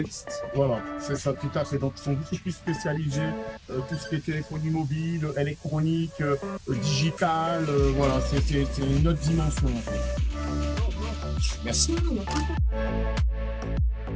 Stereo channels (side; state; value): both; identical; correlation 1.00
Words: Voilà, c'est ça, tout à fait. Donc, ils sont beaucoup plus spécialisés, tout ce qui est téléphonie mobile, électronique, digital, voilà, c'est une autre dimension. En fait. Merci.